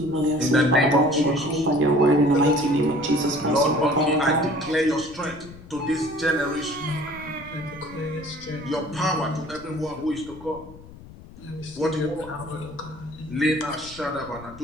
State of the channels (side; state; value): left; noise; rumble, 18 dB below the sound